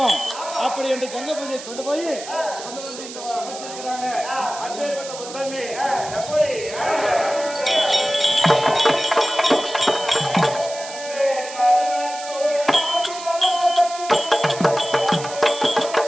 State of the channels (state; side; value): noise; right; hiss, 12 dB below the sound